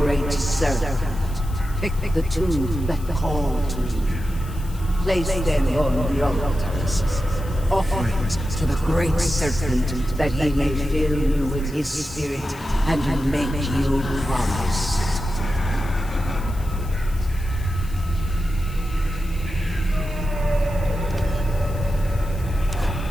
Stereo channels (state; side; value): noise; left; hiss, 21 dB below the sound